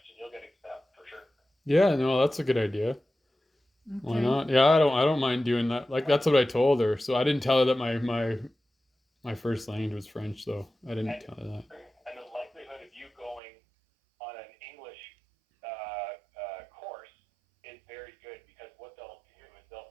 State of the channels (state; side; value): drops out; left; at 13.4 s